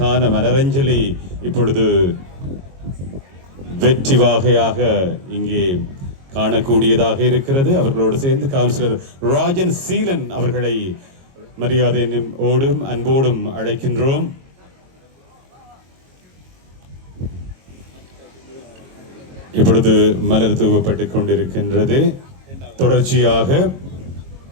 மலரஞ்சலி இப்பொழுது வெற்றி வாகையாக இங்கே காணக்கூடியதாக இருக்கிறது. அவர்களோடு சேர்ந்து கவுன்சிலர் ராஜன் சீலன் அவர்களை மரியாதையோடும் அன்போடும் அழைக்கின்றோம். இப்பொழுது மலர் தூவப்பட்டுக் கொண்டிருக்கின்றது. தொடர்ச்சியாக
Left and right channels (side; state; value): left; late; 22 ms